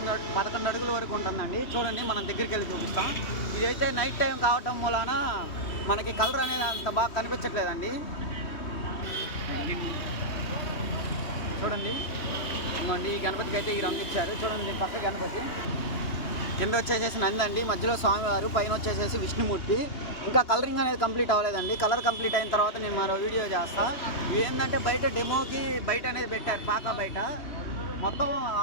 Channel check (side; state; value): right; late; 3.2 ms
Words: అడుగుల వరకు ఉంటుందండి. చూడండి, మనం దగ్గరికి వెళ్ళి చూపిస్తాం. ఇదైతే నైట్ టైం కావటం మూలాన మనకి కలర్ అనేది అంత బాగా కనిపించట్లేదండి. చూడండి, ఈ గణపతికి అయితే ఈ రంగు ఇచ్చారు. చూడండి, పక్క గణపతి కింద వచ్చేసేసి నంది అండి, మధ్యలో స్వామివారు, పైన వచ్చేసేసి విష్ణుమూర్తి. ఇంకా కలరింగ్ అనేది కంప్లీట్ అవ్వలేదండి. కలర్ కంప్లీట్ అయిన తర్వాత నేను మరో వీడియో చేస్తా. ఏంటంటే బయట డెమోకి బయట అనేది పెట్టారు, పాక బయట మొత్తం